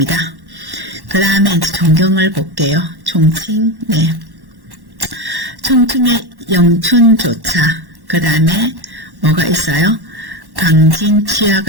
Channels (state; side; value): late; left; 1.1 ms